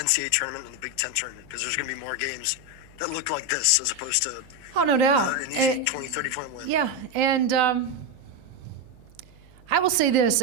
tournament and the Big Ten tournament? Because there's going to be more games that look like this as opposed to no doubt an easy 20, 30-point win. Yeah, and I will say this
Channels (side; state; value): right; noise; hum, 25 dB below the sound